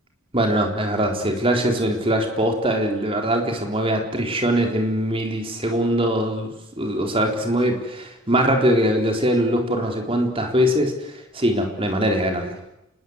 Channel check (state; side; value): normal; both; correlation 0.49